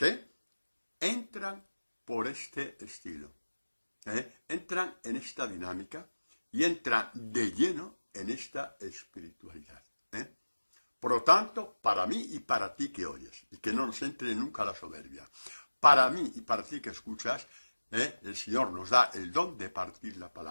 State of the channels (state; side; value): inverted; both; correlation -1.00